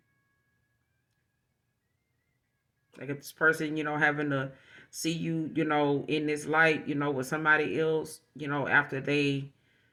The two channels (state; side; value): identical; both; correlation 1.00